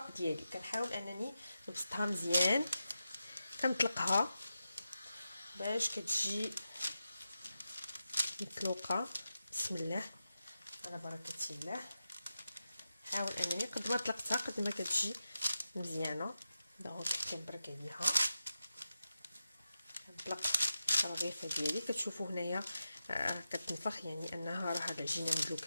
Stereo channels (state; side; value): inverted; both; correlation -0.90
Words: ديالي. كنحاول انني نبسطها مزيان، كنطلقها باش كتجي مطلوقه. بسم الله على بركه الله. حاول انني قد ما طلقتها قد ما كتجي مزيانه. دونك كنبرك عليها نطلق الرغيفه ديالي. كتشوفوا هنايا كتنفخ، يعني انها راه العجينه